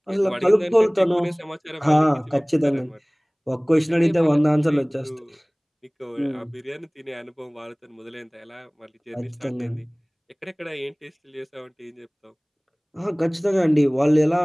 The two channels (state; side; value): identical; both; correlation 1.00